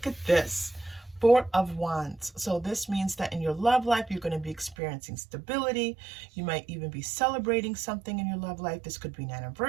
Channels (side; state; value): left; drops out; at 4.8 s